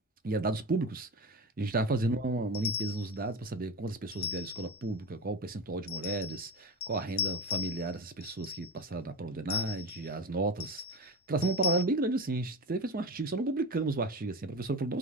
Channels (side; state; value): both; normal; correlation 0.24